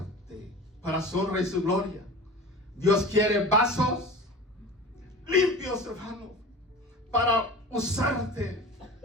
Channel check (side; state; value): both; normal; correlation 0.36